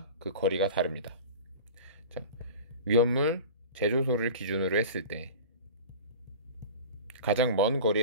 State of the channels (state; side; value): inverted; both; correlation -0.36